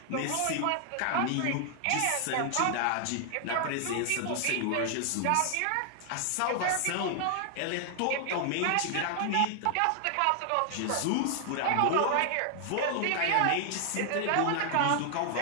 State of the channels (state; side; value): different; both; correlation 0.00